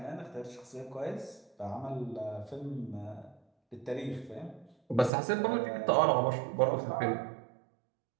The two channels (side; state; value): left; drops out; at 5.1 s